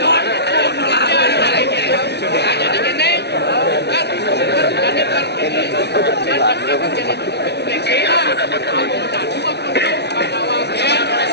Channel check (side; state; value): right; late; 0.49 ms